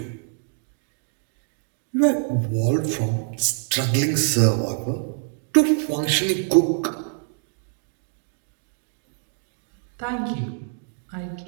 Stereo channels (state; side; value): silent; left; 58 dB below the other